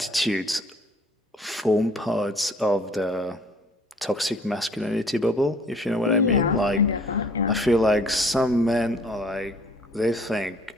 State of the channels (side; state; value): both; normal; correlation 0.55